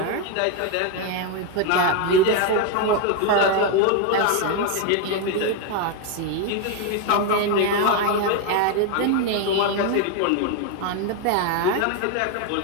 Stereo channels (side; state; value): both; different; correlation 0.01